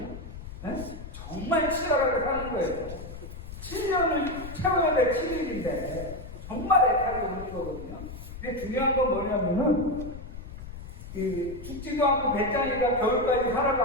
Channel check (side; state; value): left; noise; rumble, 11 dB below the sound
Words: 네? 정말 치열하게 사는 거예요. 7년을 채워야 될 7일인데 정말 애타게 오는 거거든요. 근데 중요한 건 뭐냐면은 죽지도 않고 배짱이가 겨울까지